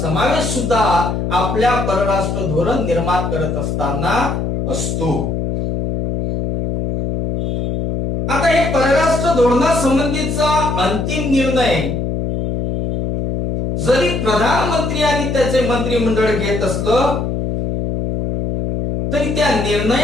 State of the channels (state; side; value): noise; left; hum, 2 dB below the sound